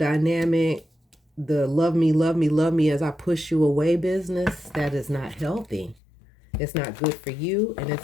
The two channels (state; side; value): drops out; right; at 6.0 s